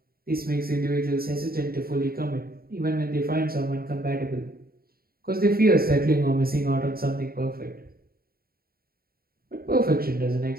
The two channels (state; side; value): late; left; 0.43 ms